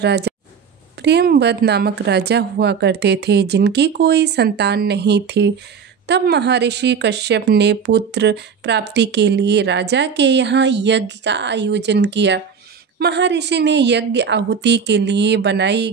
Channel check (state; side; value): quieter; left; 6.5 dB